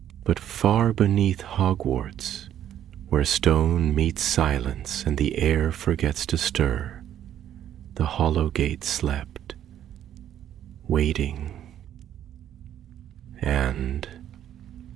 But far beneath Hogwarts, where stone meets silence and the air forgets to stir, the hollow gate slept, waiting and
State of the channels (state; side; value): quieter; left; 10.8 dB